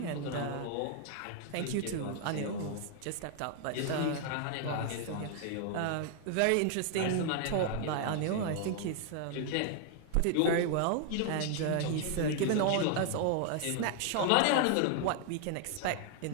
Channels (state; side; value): different; both; correlation 0.00